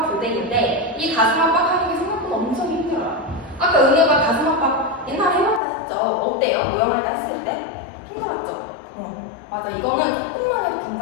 교대기인데 이 가슴 압박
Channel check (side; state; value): right; drops out; at 5.6 s